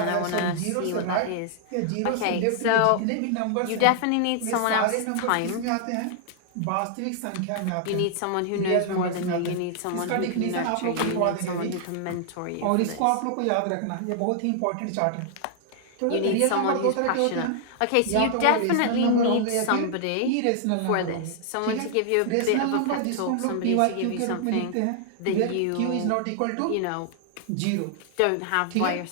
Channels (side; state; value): both; different; correlation -0.01